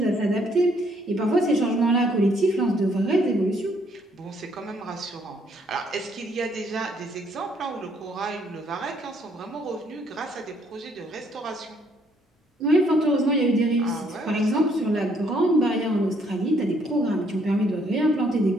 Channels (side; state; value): both; normal; correlation 0.67